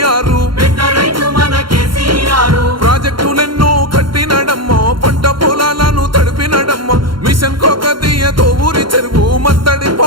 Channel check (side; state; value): left; late; 0.73 ms